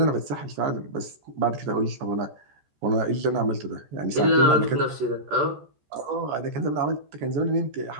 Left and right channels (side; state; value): left; late; 14 ms